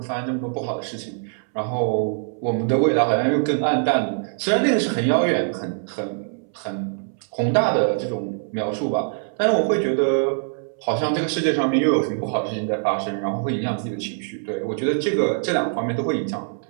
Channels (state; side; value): silent; left; 63 dB below the other